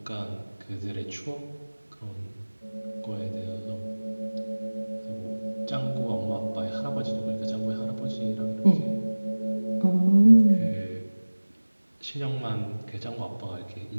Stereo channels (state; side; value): inverted; both; correlation -1.00